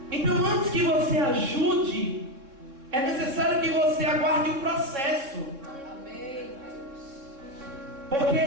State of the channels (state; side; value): late; left; 3.7 ms